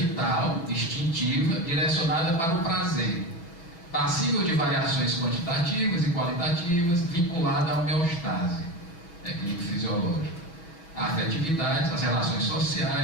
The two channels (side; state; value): right; late; 6.1 ms